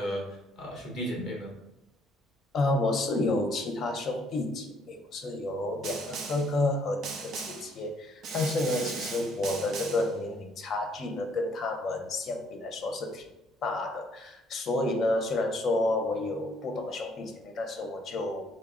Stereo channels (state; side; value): normal; both; correlation 0.66